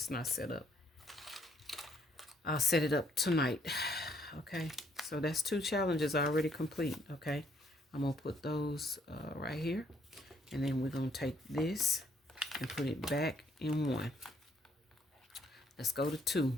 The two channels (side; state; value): both; normal; correlation 0.67